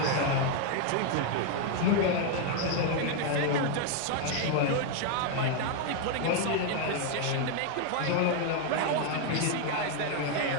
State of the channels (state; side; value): different; both; correlation 0.01